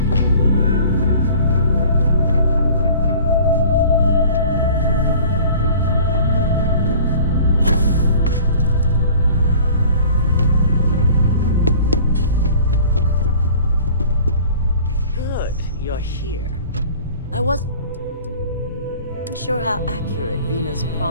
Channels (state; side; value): inverted; both; correlation -0.47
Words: You're here. I wasn't sure how accurate Vina's